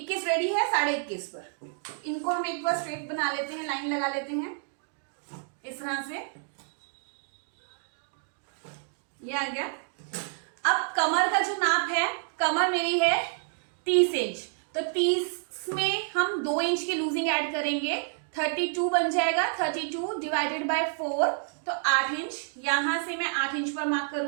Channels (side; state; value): left; silent; 59 dB below the other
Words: रेडी है, 21.5 पर। इनको हम एक बार स्ट्रेट बना लेते हैं, लाइन लगा लेते हैं इस तरह से। ये आ गया। अब कमर का जो नाप है, कमर मेरी है 30 इंच, तो 30 में हम 2 इंच की लूजिंग ऐड करेंगे, 32 बन जाएगा। 32 डिवाइडेड बाय 4 तो 8 इंच। यहां से मैं 8 इंच पर मार्क